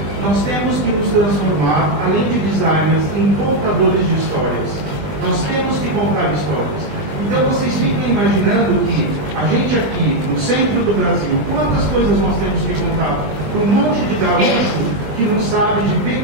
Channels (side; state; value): left; late; 20 ms